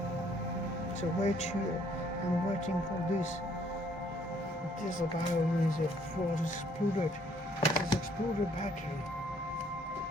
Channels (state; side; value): normal; both; correlation 0.64